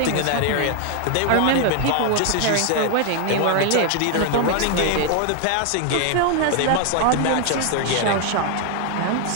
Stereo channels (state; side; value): different; both; correlation 0.00